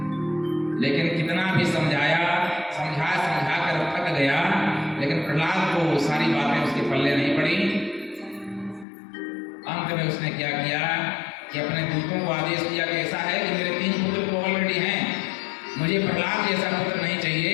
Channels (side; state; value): right; drops out; at 8.8 s